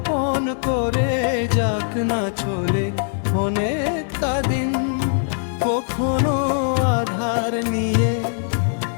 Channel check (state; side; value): silent; right; digital silence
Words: করে যাক না চলে অনেকটা দিন, কখনো আধার নিয়ে